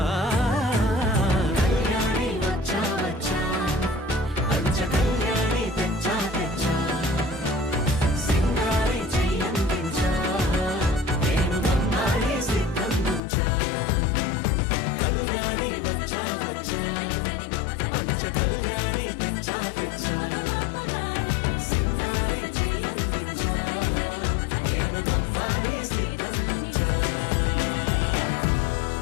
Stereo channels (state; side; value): drops out; right; at 13.2 s